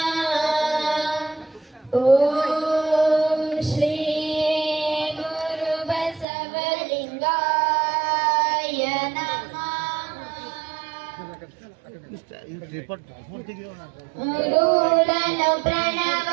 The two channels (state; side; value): drops out; left; at 6.2 s